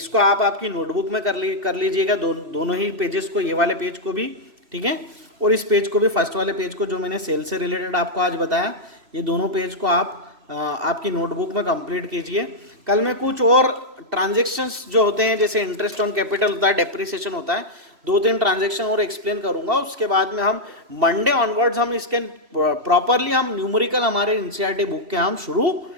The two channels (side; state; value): left; late; 3.0 ms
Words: आप आपकी नोटबुक में कर लीजिएगा, दोनों ही पेजेस को, ये वाले पेज को भी, ठीक है, और इस पेज को भी, फर्स्ट वाले पेज को जो मैंने सेल से रिलेटेड आपको आज बताया, ये दोनों पेज को आप आपकी नोटबुक में कंप्लीट कीजिए। कल में कुछ और ट्रांजेक्शन्स जो होते हैं, जैसे इंटरेस्ट ऑन कैपिटल होता है, डेप्रिसिएशन होता है, 2-3 ट्रांजेक्शन और एक्सप्लेन करूंगा। उसके बाद में हम मंडे ऑनवर्ड्स हम इसके प्रॉपरली हम न्यूमेरिकल हमारे एनसीईआरटी बुक के हम शुरू